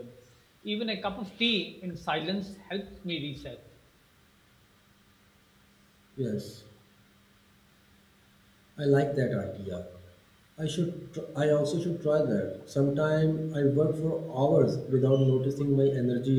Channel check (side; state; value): both; identical; correlation 1.00